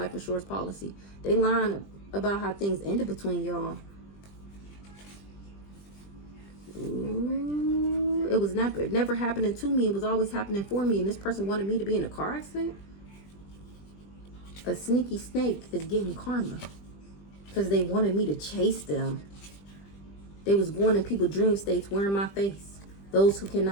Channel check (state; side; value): late; right; 20 ms